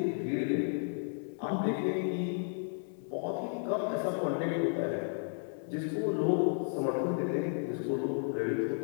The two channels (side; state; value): right; silent; 56 dB below the other